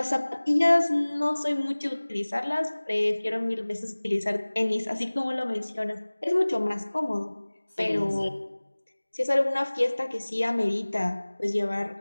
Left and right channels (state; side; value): inverted; both; correlation -1.00